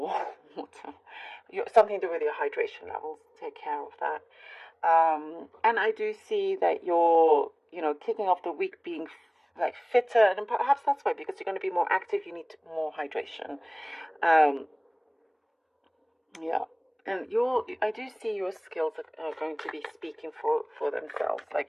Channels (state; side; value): identical; both; correlation 1.00